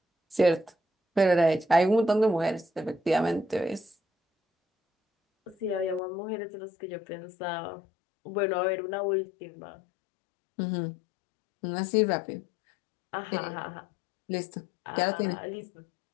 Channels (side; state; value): right; drops out; at 6.0 s